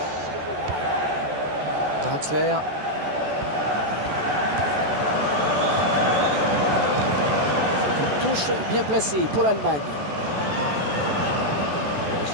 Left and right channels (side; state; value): left; late; 14 ms